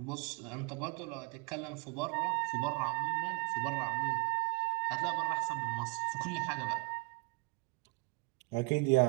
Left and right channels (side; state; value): left; quieter; 29.2 dB